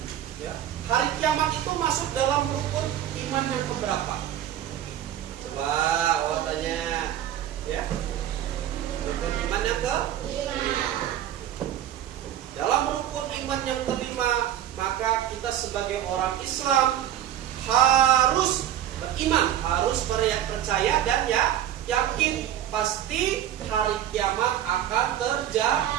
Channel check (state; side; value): quieter; left; 11.3 dB